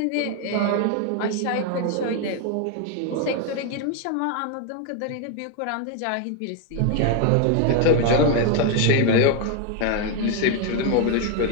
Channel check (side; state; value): both; different; correlation 0.01